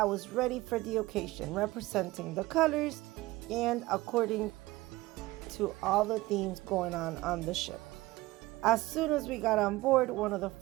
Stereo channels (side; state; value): left; quieter; 19.4 dB